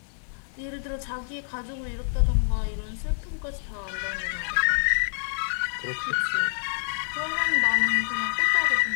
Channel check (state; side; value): silent; right; 58 dB below the other